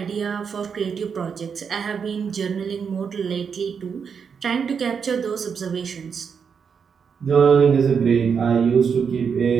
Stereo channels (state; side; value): quieter; left; 6.5 dB